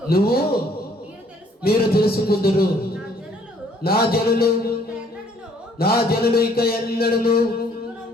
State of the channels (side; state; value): both; normal; correlation 0.61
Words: మీరు తెలుసుకుందురు. నా జనులు ఇక ఎన్నడను